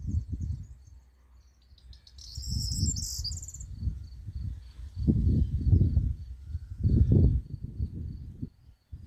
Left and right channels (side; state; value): both; identical; correlation 1.00